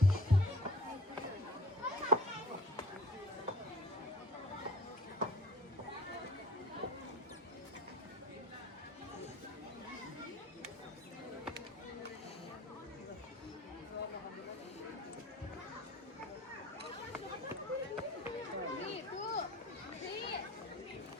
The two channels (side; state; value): both; normal; correlation 0.46